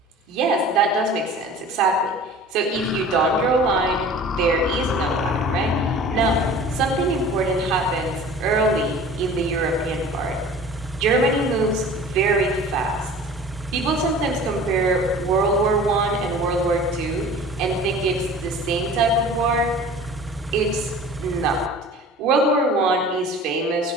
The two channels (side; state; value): both; normal; correlation 0.43